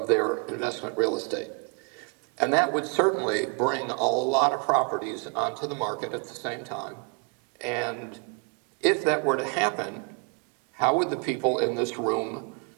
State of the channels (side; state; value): left; quieter; 34.6 dB